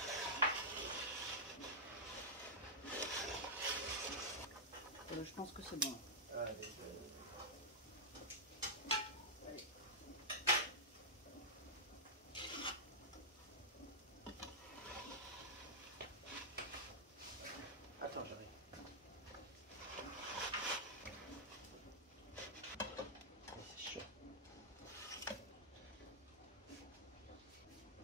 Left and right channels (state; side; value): normal; both; correlation -0.09